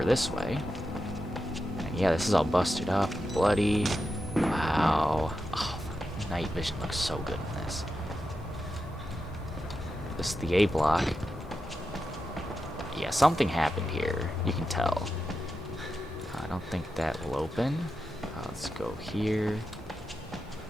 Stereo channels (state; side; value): normal; both; correlation 0.89